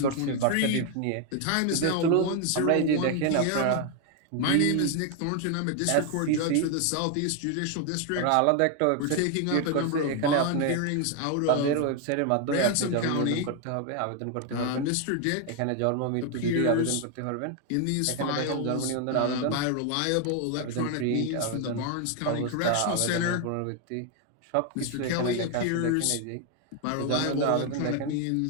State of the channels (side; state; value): both; different; correlation 0.01